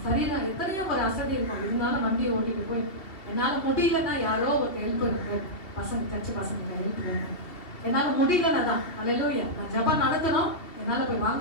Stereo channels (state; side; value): late; right; 2.9 ms